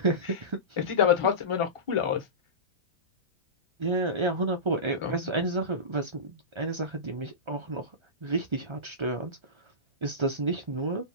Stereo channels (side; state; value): left; late; 1.3 ms